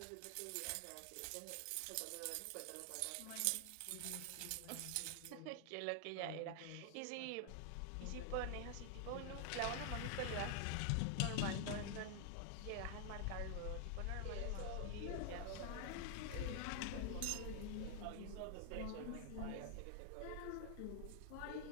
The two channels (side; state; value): both; different; correlation 0.00